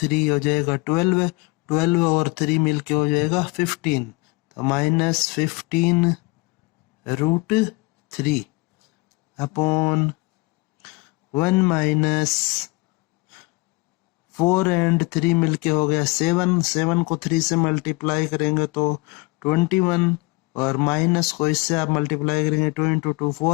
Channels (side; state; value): right; quieter; 25.6 dB